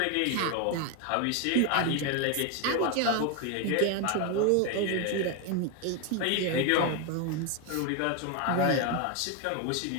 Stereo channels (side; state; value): both; different; correlation 0.02